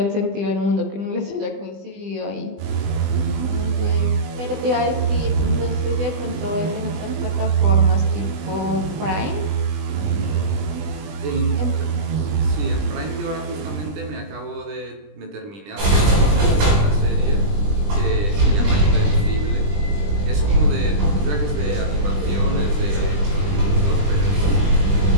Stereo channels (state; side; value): late; left; 20 ms